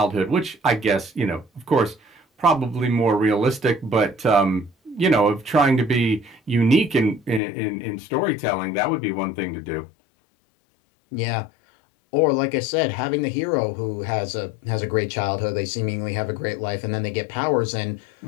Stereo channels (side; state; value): right; drops out; at 7.4 s